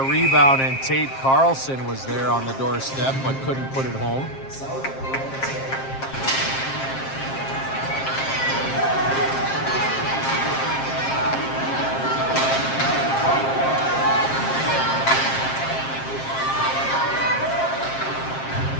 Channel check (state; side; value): late; right; 7.5 ms